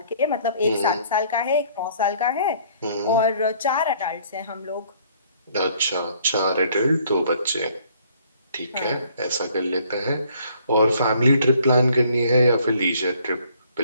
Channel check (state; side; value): inverted; both; correlation -0.61